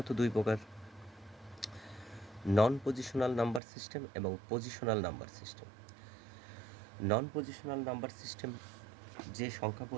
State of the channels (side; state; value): left; drops out; at 3.6 s